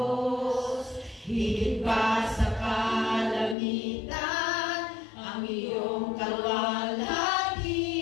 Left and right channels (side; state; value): right; drops out; at 3.6 s